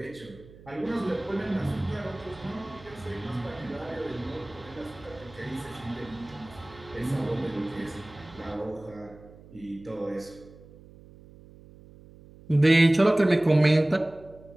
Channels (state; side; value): noise; right; hum, 21 dB below the sound